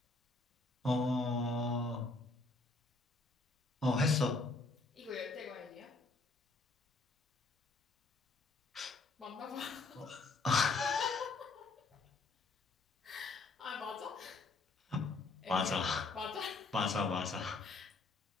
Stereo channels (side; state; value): right; quieter; 3.5 dB